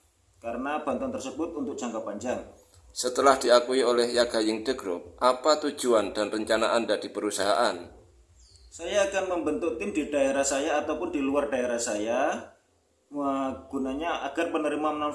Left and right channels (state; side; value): identical; both; correlation 1.00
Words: karena bantuan tersebut untuk jangka panjang. Setelah diakui oleh Yaga Yingde Group, apa tujuan dan rencana Anda di perusahaan? Saya akan membentuk tim di daerah saya ataupun di luar daerah saya, gunanya agar penerima